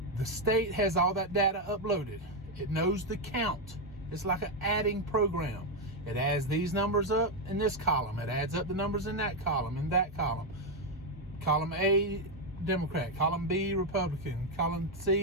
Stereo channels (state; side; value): normal; both; correlation 0.04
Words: The state has all that data uploaded. It knows the count. It's like an adding program. It adds these numbers up in this column. It adds up the numbers in that column, in that column. Column A, Democrat. Column B, Republican. Column